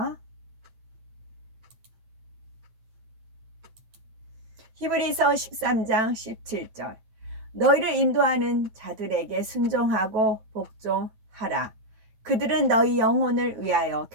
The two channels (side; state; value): left; late; 9.2 ms